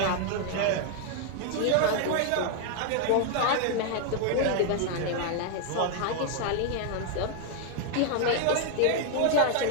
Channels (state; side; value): different; both; correlation 0.00